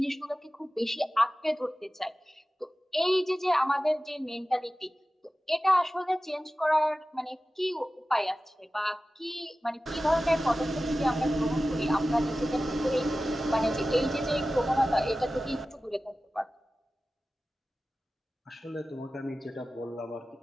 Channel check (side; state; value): both; normal; correlation 0.95